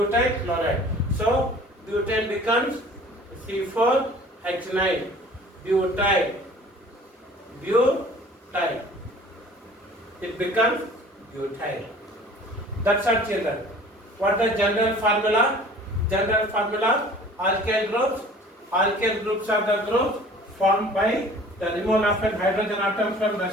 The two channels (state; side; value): normal; both; correlation 0.48